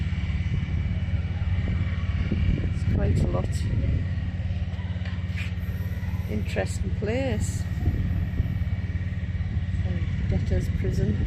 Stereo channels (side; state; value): both; identical; correlation 1.00